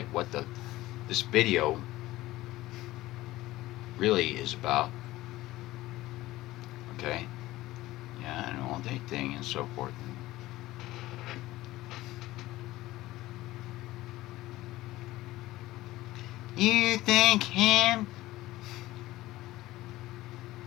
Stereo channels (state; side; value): quieter; right; 17.1 dB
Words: what this video really is about. Okay, yeah, an all day thing and so forth. You think him?